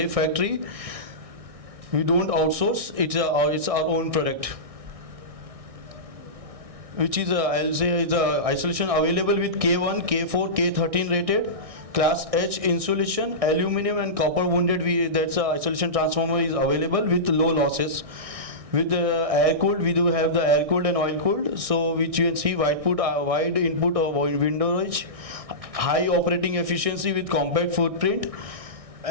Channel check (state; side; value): late; left; 1.6 ms